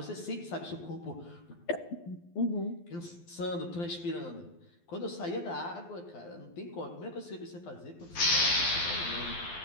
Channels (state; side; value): late; right; 12 ms